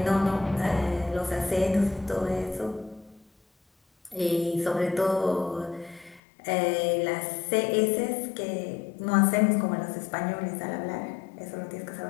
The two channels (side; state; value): right; drops out; at 6.2 s